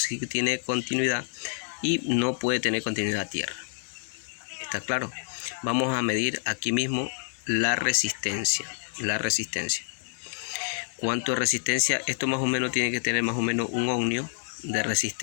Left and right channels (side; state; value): right; silent; digital silence